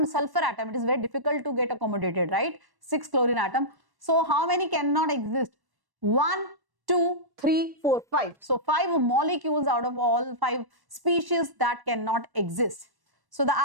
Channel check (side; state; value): left; late; 1.1 ms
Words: sulfur atom, it is very difficult to get accommodated, right? 6 chlorine atom. So how many cannot exist? 1, 2, 3, 4, 5. So 5 molecules out of all 5 species that cannot exist. So the